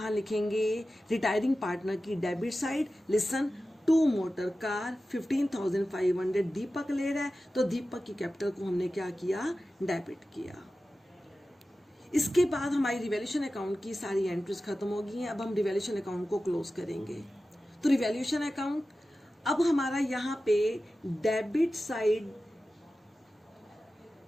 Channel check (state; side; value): normal; both; correlation 0.94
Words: लिखेंगे, रिटायरिंग पार्टनर की debit side. Listen, 2 motor car 15,500 दीपक ले रहा है, तो दीपक की कैपिटल को हमने क्या किया, डेबिट किया। इसके बाद हमारी रिवैल्यूएशन अकाउंट की सारी एंट्रीज खत्म हो गई हैं। अब हम रिवैल्यूएशन अकाउंट को क्लोज करेंगे। तो रिवैल्यूएशन अकाउंट, अब हमारा यहाँ पे debit side